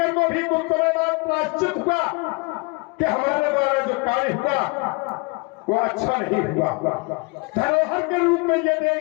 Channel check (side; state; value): right; quieter; 28.2 dB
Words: को भी कुछ समय बाद प्रायश्चित हुआ कि हमारे द्वारा जो कार्य हुआ वो अच्छा नहीं हुआ। धरोहर के रूप में ये